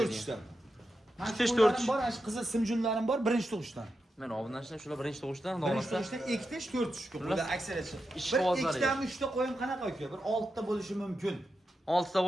4 Ikkitish, to'rtish. bor, ana qizil simjunlarim bor, birinchi tug'ishdan. Mana obunachilar shular birinchi tug'ishdan Birinchi davomlashsa. tug'ishdan ikkitish, to'rtish qo'ylar aksariyat. Ish Bir qog'ozlari. ikkitami, uchta qo'yim qanaqa uka? Bir 6 ta bo'lishi mumkin. 6 ta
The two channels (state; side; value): normal; both; correlation 0.88